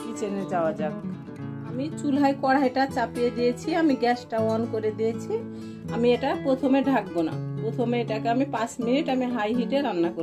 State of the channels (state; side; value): identical; both; correlation 1.00